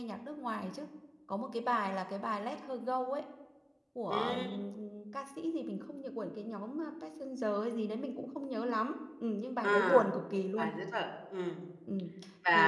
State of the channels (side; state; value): both; identical; correlation 1.00